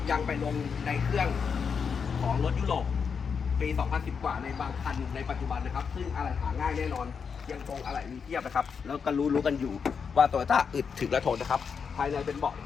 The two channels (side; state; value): right; quieter; 6.2 dB